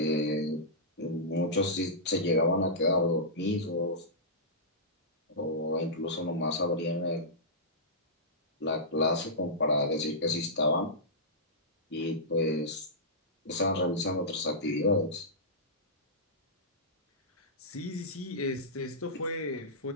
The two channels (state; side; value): normal; both; correlation -0.15